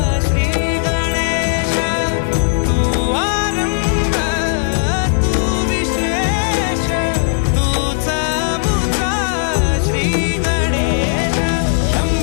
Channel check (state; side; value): silent; right; digital silence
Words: श्री गणेश। तू आरंभ तू विशेष, तूच मुचा श्री गणेश।